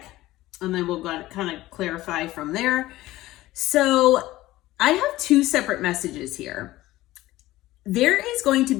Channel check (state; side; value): quieter; right; 16.9 dB